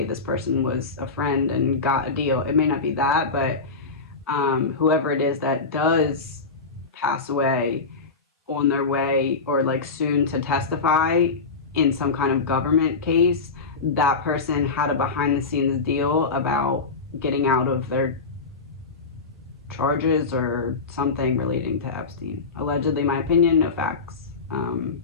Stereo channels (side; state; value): right; quieter; 4.3 dB